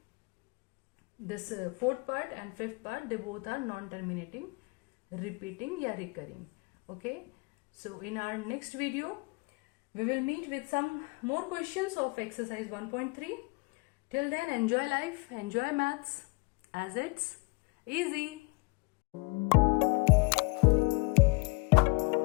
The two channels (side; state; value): right; quieter; 29.9 dB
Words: This fourth part and fifth part, they both are non-terminating, repeating या recurring. Okay, so in our next video we will meet with some more questions of exercise 1.3. Till then, enjoy life, enjoy maths, as it's easy.